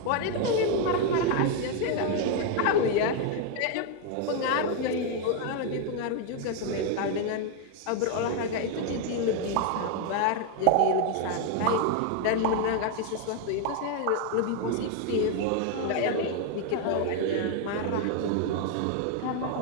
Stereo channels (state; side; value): different; both; correlation 0.01